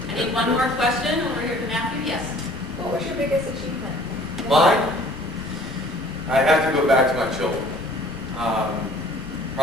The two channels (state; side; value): noise; left; rumble, 16 dB below the sound